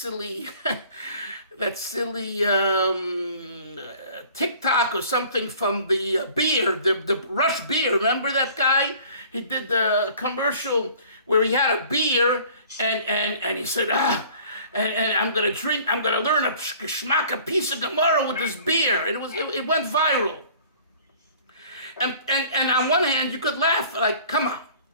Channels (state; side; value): inverted; both; correlation -0.51